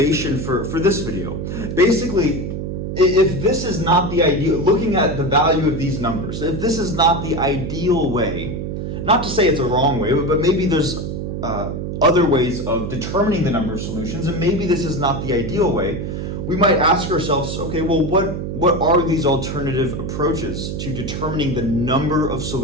for this video. Basically, if this is not the ideal, looking at the value of these numbers, if this is not the ideal way, not to say it's a wrong way, but maybe there's other ways of determining the number of solutions, and maybe this is not the ideal way, we might ask ourselves, okay, well, what are these alternative approaches to determining the number of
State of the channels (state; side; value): noise; right; hum, 4 dB below the sound